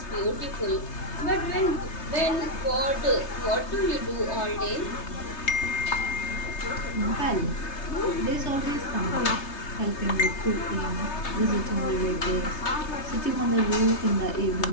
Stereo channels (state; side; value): late; right; 3.3 ms